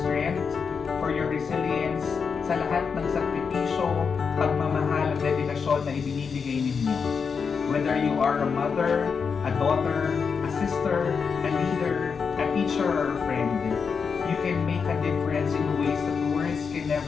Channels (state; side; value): quieter; right; 5.8 dB